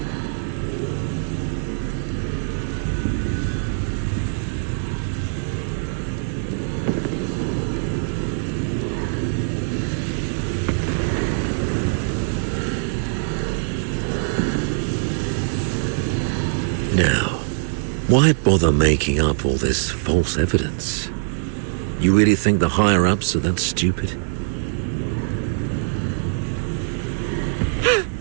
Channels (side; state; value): left; silent; digital silence